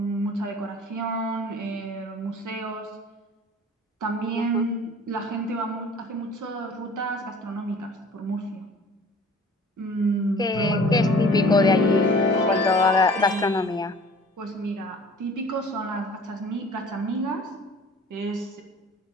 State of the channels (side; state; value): both; normal; correlation 0.47